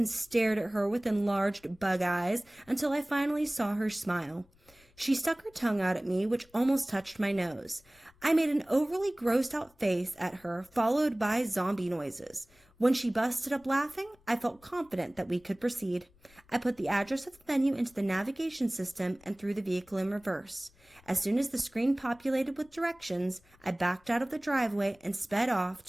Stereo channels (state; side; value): noise; left; rumble, 30 dB below the sound